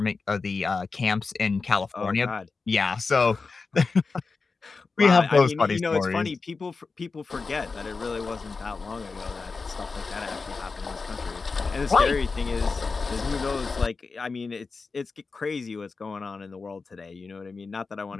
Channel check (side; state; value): right; quieter; 4.4 dB